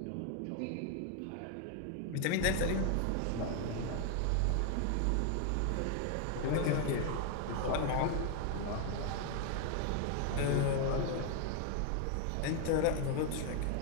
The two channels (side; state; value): both; different; correlation 0.01